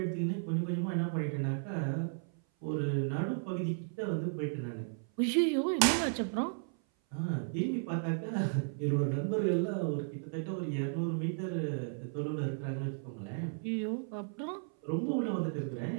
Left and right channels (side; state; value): left; silent; 55 dB below the other